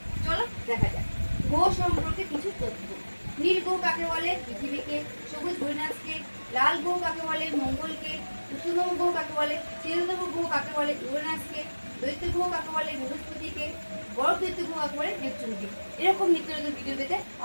চলো দেখা যাক গ্রহ সম্পর্কে কিছু তথ্য। নীল গ্রহ কাকে বলে? পৃথিবীকে। সবুজ ইউরেনাসকে। লাল গ্রহ কাকে বলে? মঙ্গলকে। উষ্ণতম গ্রহ কাকে বলে? শীতলতম গ্রহ কাকে বলে? ইউরেনাসকে। দৈত্য গ্রহ কাকে বলে? বৃহস্পতিকে। বড় দৈত্য গ্রহ কাকে বলে? নেপচুনকে। এরকম নিত্য নতুন ভিডিও পেতে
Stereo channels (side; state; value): both; inverted; correlation -1.00